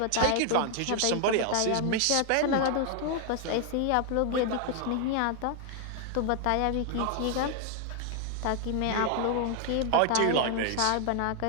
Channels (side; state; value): both; different; correlation 0.00